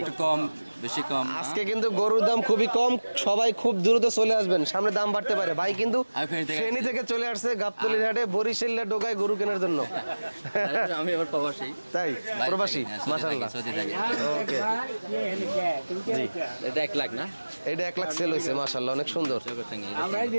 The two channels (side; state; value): both; inverted; correlation -1.00